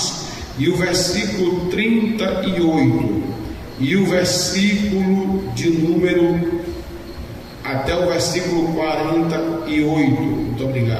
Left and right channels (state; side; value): identical; both; correlation 1.00